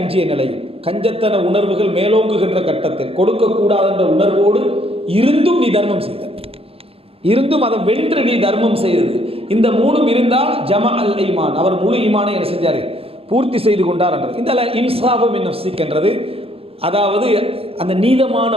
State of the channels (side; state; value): left; late; 0.28 ms